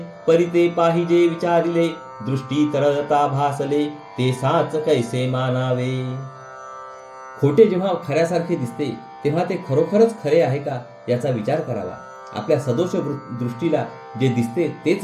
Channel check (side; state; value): both; identical; correlation 1.00